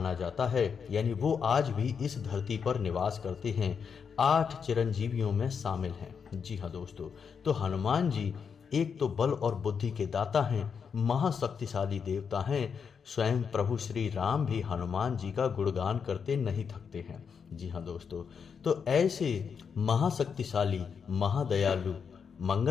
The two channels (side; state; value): right; quieter; 6.4 dB